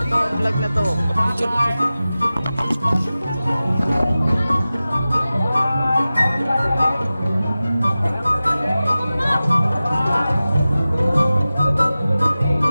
itong vlog na to.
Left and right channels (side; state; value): both; inverted; correlation -0.96